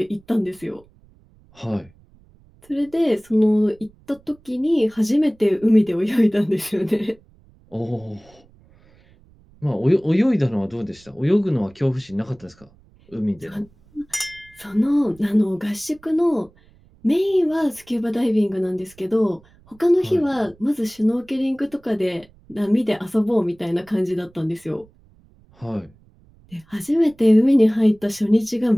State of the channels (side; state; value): right; noise; rumble, 29 dB below the sound